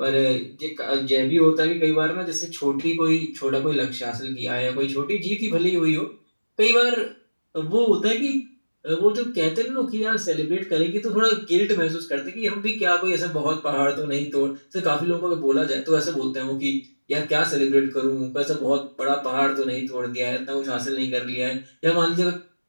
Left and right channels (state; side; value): inverted; both; correlation -1.00